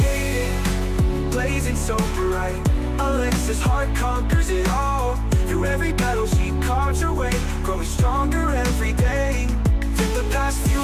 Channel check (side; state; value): both; identical; correlation 1.00